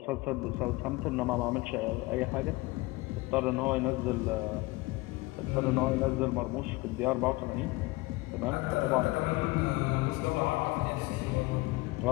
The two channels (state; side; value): quieter; right; 21.9 dB